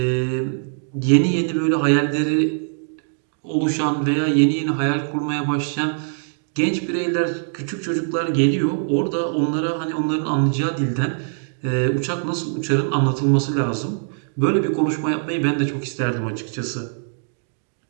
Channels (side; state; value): left; silent; digital silence